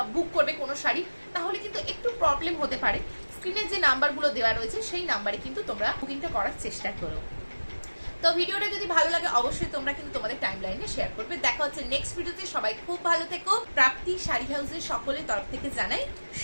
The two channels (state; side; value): inverted; both; correlation -1.00